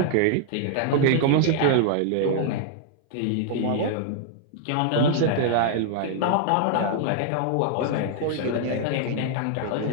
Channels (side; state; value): both; different; correlation 0.00